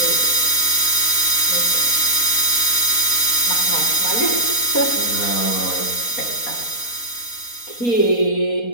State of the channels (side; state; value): right; late; 4.2 ms